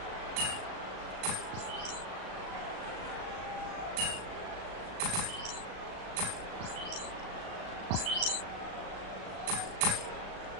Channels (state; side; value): late; left; 36 ms